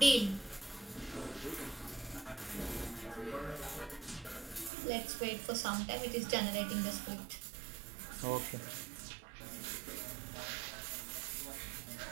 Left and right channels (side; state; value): left; drops out; at 4.7 s